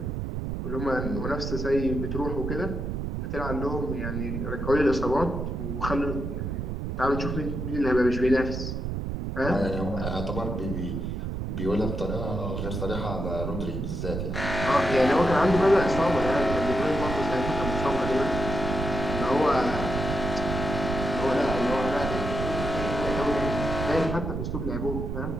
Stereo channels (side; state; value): right; noise; rumble, 3 dB below the sound